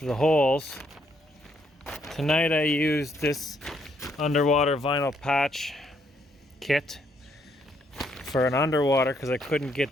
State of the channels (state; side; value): normal; both; correlation 0.72